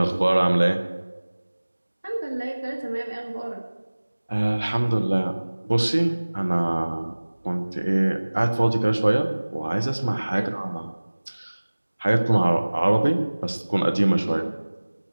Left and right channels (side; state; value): both; inverted; correlation -1.00